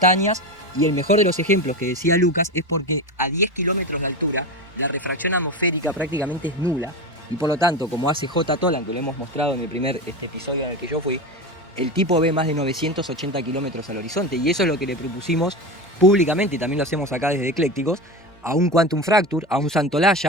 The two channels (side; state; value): both; normal; correlation 0.22